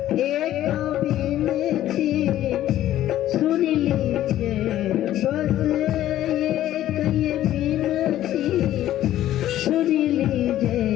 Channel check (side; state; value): right; quieter; 13.1 dB